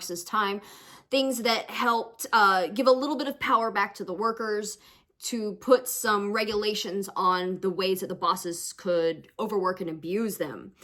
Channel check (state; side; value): identical; both; correlation 1.00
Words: time, things that helped give a little bit of power back to the workers, to put some regulations on the ways that the bosses could overwork and abuse them.